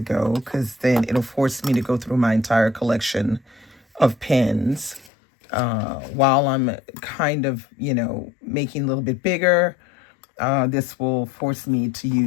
go because then it'll force me to go through my entire collection of pens while I'm kind of, making a little bit bigger. This will force me to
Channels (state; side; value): drops out; right; at 5.1 s